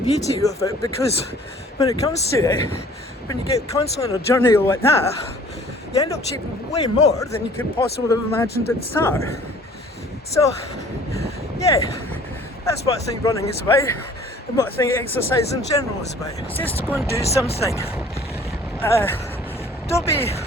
beauty of it, because when it comes to it, when you get constantly on a journey like that, you end up achieving way more than you could possibly have imagined at the start. So yeah, that's what I think running is about, and what I think exercise in general is about. It's just to go and do something. Don't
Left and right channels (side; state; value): both; normal; correlation 0.52